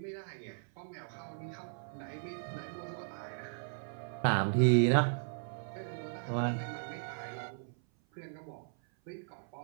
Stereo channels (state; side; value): silent; left; 53 dB below the other